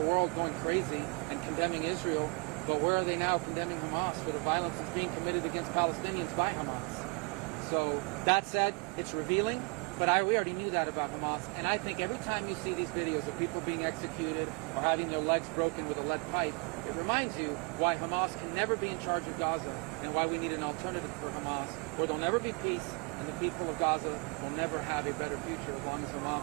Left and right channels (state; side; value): quieter; left; 31.7 dB